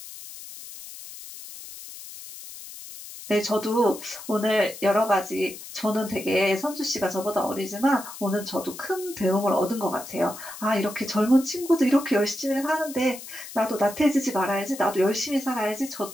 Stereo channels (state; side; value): noise; left; hiss, 13 dB below the sound